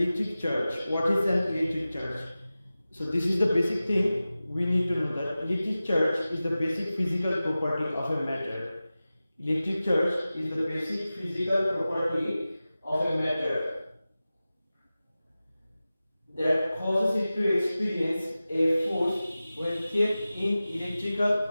charge. What is an electric charge? So this is the basic thing we need to know, that electric charge is the basic physical property of a matter. Electric charge is the basic physical property of a matter that causes it to experience a force when kept in electrical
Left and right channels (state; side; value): inverted; both; correlation -0.96